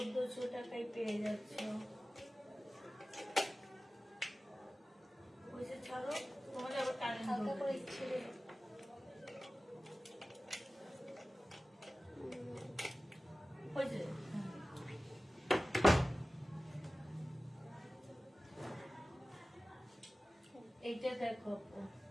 টাকায় পেয়ে যাচ্ছ। ওইসে ছাড়ো, তোমাদের আবার কারেন্ট করে ইচ্ছে এইটা দেখো,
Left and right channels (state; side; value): normal; both; correlation 0.96